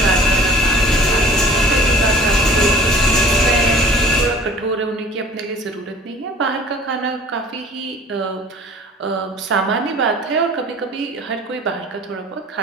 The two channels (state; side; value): normal; both; correlation 0.48